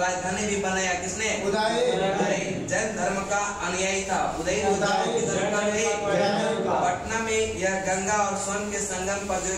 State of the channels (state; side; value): identical; both; correlation 1.00